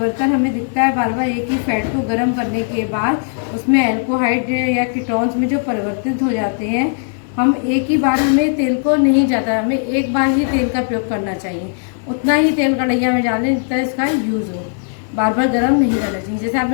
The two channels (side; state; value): right; silent; digital silence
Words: हमें दिखता है बार बार एक ही फैट को गर्म करने के बाद, उसमें अल्कोहाइड या कीटोन्स में जो परिवर्तित हो जाते हैं, हम एक ही बार, हमें तेल को नहीं जाता, हमें एक बार ही तेल का प्रयोग करना चाहिए, उतना ही तेल कढ़ैया में डालें जितना इसका यूज़ हो, बार बार गर्म नहीं करना चाहिए। जैसे